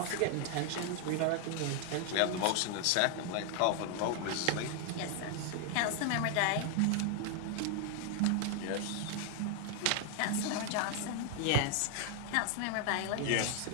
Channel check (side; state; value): both; different; correlation 0.00